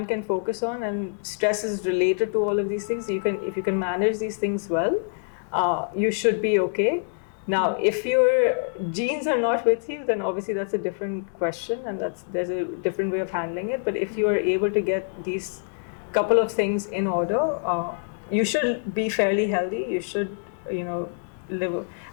can focus on, and stress is related to all of these things. If you can manage these things well, you should be okay. Now, if your genes are not with you, then obviously that's a different question, and there's a different way of handling it. But if you are able to get these couple of things in order, you should be fairly healthy. You should, live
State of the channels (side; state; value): right; silent; digital silence